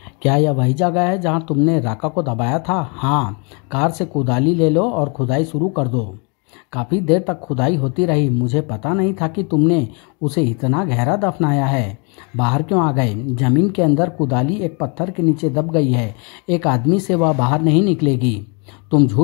क्या यह वही जगह है जहाँ तुमने राका को दबाया था? हाँ। कार से कुदाली ले लो और खुदाई शुरू कर दो। काफ़ी देर तक खुदाई होती रही। मुझे पता नहीं था कि तुमने उसे इतना गहरा दफनाया है। बाहर क्यों आ गए? जमीन के अंदर कुदाली एक पत्थर के नीचे दब गई है। एक आदमी से वह बाहर नहीं निकलेगी। तुम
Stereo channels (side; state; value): right; quieter; 34.3 dB